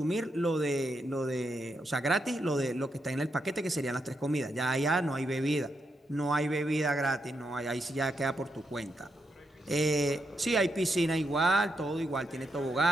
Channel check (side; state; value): both; normal; correlation 0.82